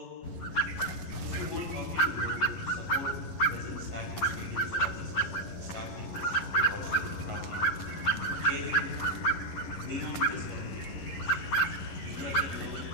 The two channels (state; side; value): late; right; 11 ms